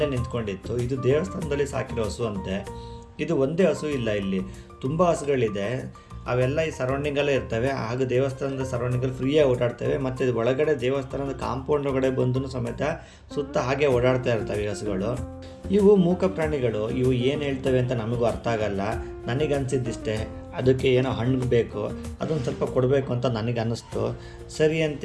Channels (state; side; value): identical; both; correlation 1.00